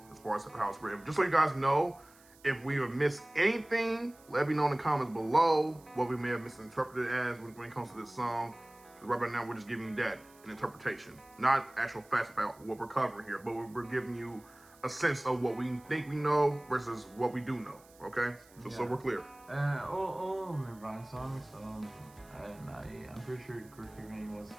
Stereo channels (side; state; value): right; noise; hiss, 26 dB below the sound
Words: as far as how it's written. Just so you guys know, if we have missed anything, let me know in the comments below what we may have misinterpreted as when it comes to this song. Because right now we're just giving you that, an interpretation, not actual facts about what we're covering here, but we're giving you a sense of what we think we know versus what we do know, okay? So we're clear. All Nirvana songs, and I'm pretty sure Kurt Cobain was